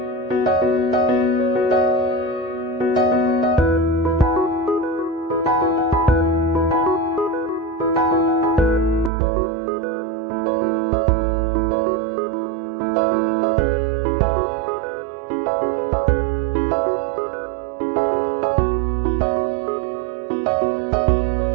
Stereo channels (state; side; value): drops out; left; at 9.1 s